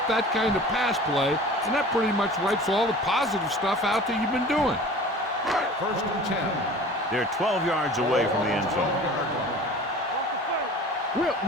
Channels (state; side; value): normal; both; correlation 0.42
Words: that kind of pass play, and that pretty much wipes all the positive stuff out that you've been doing. First and 10. They're 12 yards away from the end zone. Will.